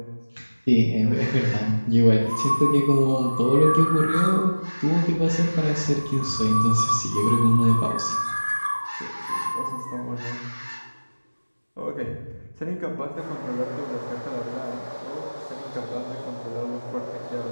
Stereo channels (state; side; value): inverted; both; correlation -1.00